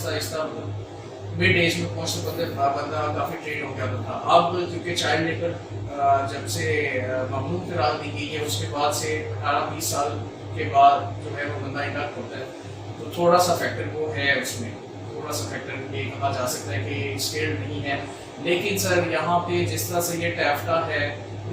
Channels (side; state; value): both; identical; correlation 1.00